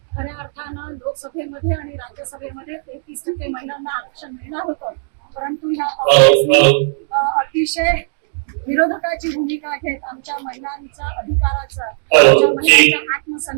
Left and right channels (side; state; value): left; silent; digital silence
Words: खऱ्या अर्थानं लोकसभेमध्ये आणि राज्यसभेमध्ये 33% महिलांना आरक्षण मिळणार होतं, परंतु ह्या काँग्रेसने अतिशय विरोधकाची भूमिका घेत आमच्या महिलांच्या अधिकाराचा आमच्या महिलांच्या